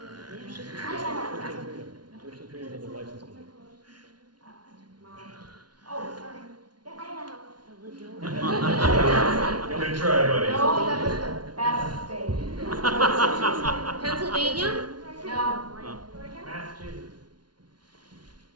First and trained on the license plate. oh, sorry. Good try, buddy. No, that was the best state. Pennsylvania? No. Massachusetts.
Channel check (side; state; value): left; late; 0.70 ms